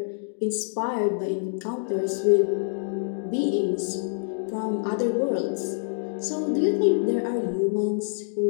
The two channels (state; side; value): silent; right; digital silence